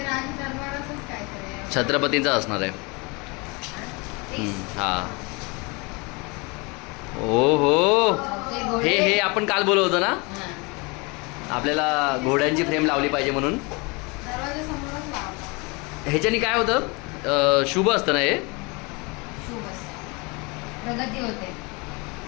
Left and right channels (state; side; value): quieter; right; 28.2 dB